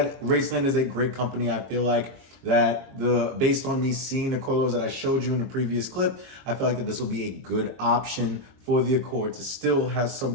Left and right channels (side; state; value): left; late; 22 ms